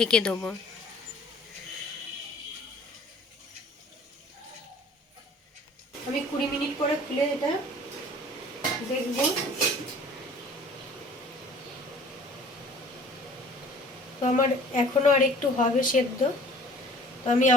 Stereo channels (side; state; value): both; normal; correlation 0.50